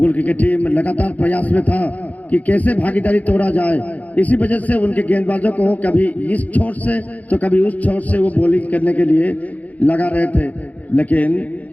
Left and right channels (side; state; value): right; late; 0.074 ms